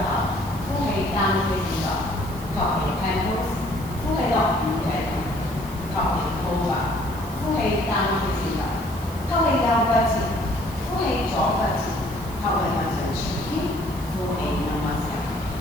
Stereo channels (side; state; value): right; noise; hiss, 17 dB below the sound